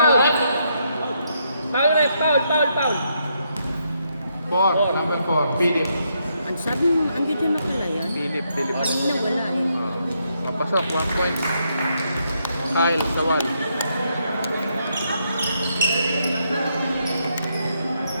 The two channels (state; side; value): inverted; both; correlation -0.77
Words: Foul, ref. Foul. 4, number 4. Philip. Ang sabi mo, ang ganda na pala yan. Philip. Kanina wala eh. Kapasok, 1 point. Kyle, Sawal.